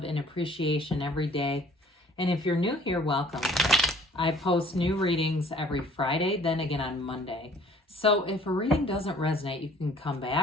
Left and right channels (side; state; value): both; normal; correlation 0.55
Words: and appreciation every day. And if you're new here, welcome. I post new readings every Friday, then again on Monday. So if a reading doesn't resonate, you can come